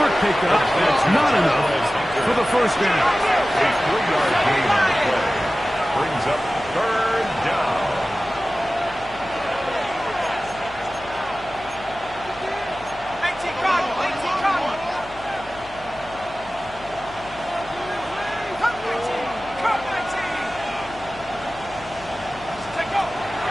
pickup. That's not enough for the first down. A 3-yard gain on the play. Brings up third down.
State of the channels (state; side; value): noise; left; hum, 20 dB below the sound